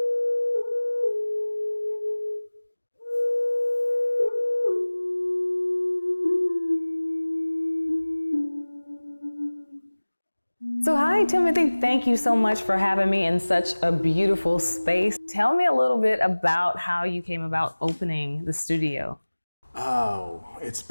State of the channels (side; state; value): both; inverted; correlation -1.00